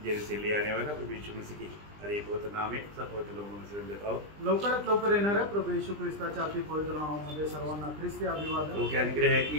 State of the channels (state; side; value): late; left; 20 ms